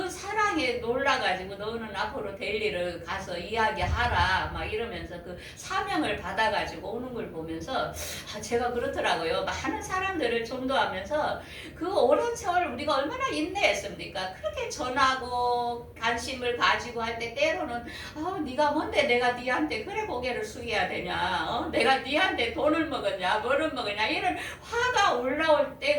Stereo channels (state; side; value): identical; both; correlation 1.00